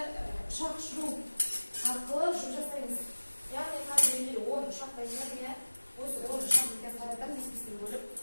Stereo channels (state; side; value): inverted; both; correlation -1.00